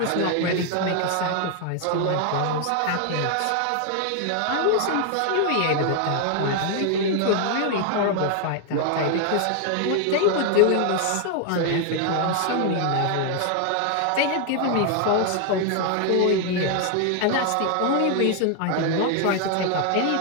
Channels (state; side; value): different; both; correlation 0.00